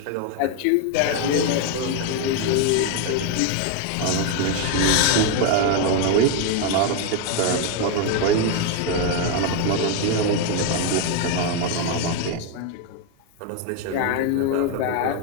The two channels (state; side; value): different; both; correlation 0.01